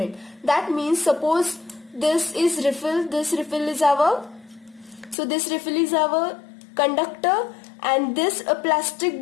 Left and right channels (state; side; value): drops out; right; at 5.2 s